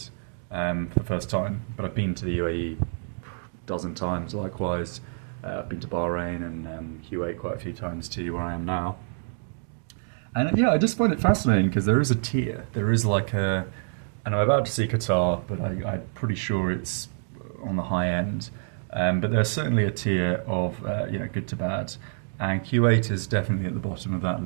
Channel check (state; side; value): silent; left; digital silence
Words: for the first time, but I've been to the UAE a dozen times likewise. I've been to Bahrain and Kuwait quite a few times too, where I am now. And yeah, I just find it fascinating because there is a tier. There is like a, and I'm about to see Qatar, but I'm pretty sure it's on the high end. But there's certainly a tier of good to bad. And Kuwait is definitely at the bottom of that